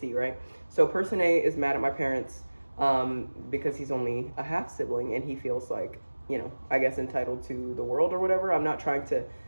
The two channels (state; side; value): inverted; both; correlation -1.00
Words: right? So person A is mad at my parents because he's only a half sibling and he feels like, I guess entitled to the world or whatever. I'm not trying to